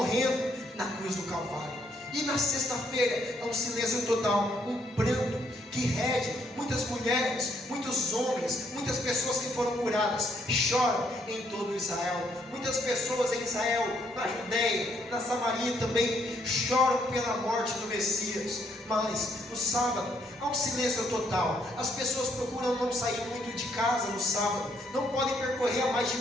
na cruz do Calvário. E na sexta-feira é um silêncio total, um pranto que rege. Muitas mulheres, muitos homens, muitas pessoas que foram curadas choram em todo Israel. Muitas pessoas em Israel, na Judeia, na Samaria também choram pela morte do Messias. Mas no sábado há um silêncio total. As pessoas procuram não sair muito de casa no sábado, não podem percorrer a mais de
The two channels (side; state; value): both; normal; correlation 0.71